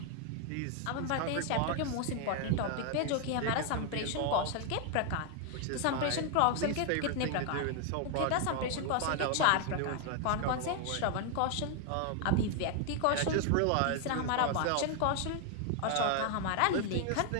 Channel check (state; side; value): different; both; correlation 0.00